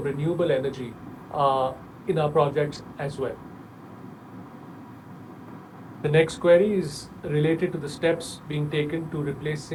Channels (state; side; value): identical; both; correlation 1.00